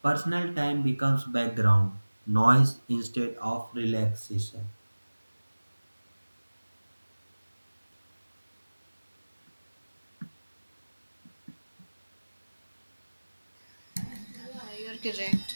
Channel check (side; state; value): both; inverted; correlation -1.00